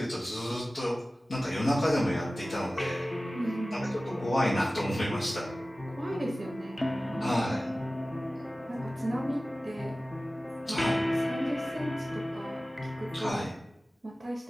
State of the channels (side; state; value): both; normal; correlation 0.97